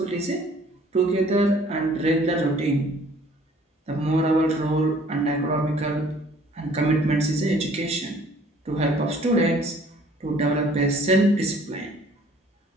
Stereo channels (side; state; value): both; normal; correlation 0.56